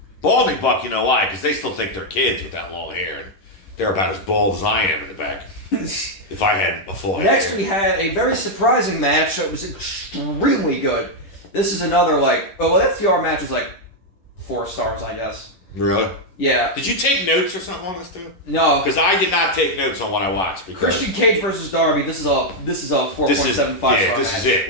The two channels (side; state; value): right; late; 11 ms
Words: Balding Buck, you know why? Because they still think they're kids with that long hair. And they're about as bald as I am in the back. If I had a full Next, hair. we had a very surprising match that was extremely good. This is another, FTR match is 4 stars, I guess. Really? Yeah. Did you take notes or something on this too? No. Because I did not take notes on what I watched. Christian Cage versus Darby. This is a 4.75 star. Yeah, this is